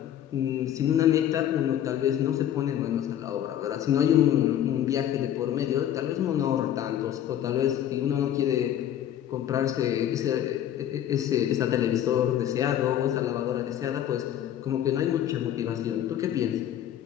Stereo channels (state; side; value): quieter; right; 10.9 dB